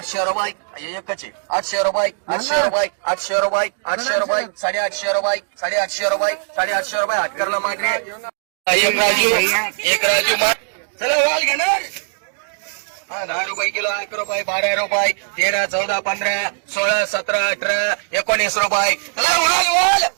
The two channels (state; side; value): silent; left; digital silence